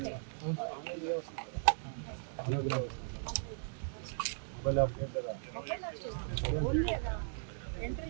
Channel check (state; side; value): silent; left; digital silence